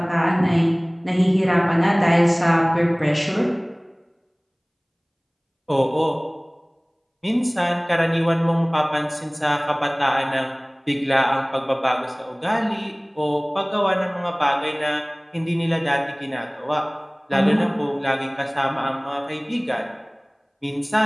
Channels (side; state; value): both; identical; correlation 1.00